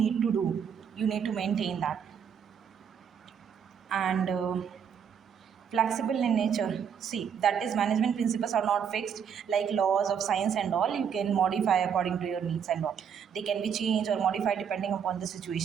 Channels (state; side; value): quieter; left; 7.5 dB